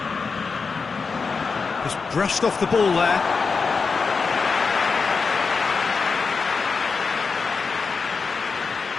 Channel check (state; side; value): quieter; right; 4.9 dB